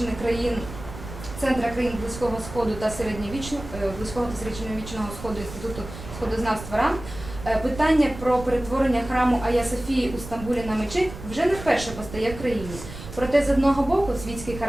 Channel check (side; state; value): right; noise; rumble, 12 dB below the sound